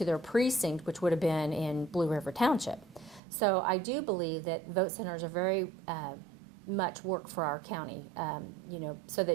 their precinct, which would have been in Blue River Township. So I do believe that vote centers are very much work for our county, so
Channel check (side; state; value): left; drops out; at 3.2 s